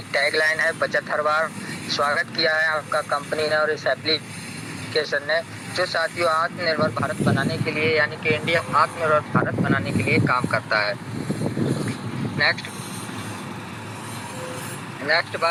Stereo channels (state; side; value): identical; both; correlation 1.00